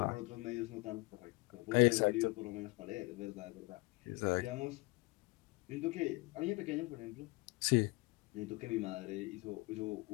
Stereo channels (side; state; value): right; quieter; 25.0 dB